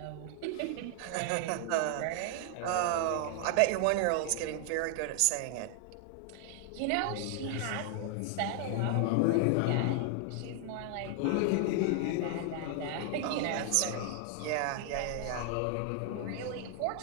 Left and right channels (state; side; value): different; both; correlation 0.00